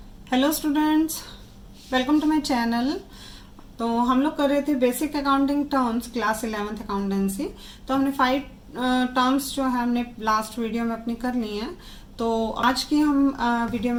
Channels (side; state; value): both; identical; correlation 1.00